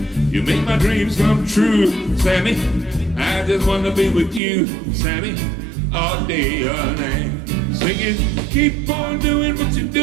you make my dreams come true, Sammy. I just wanna be with you, Sammy, all day, all night. Singing, keep on doing what you're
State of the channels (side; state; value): left; drops out; at 4.4 s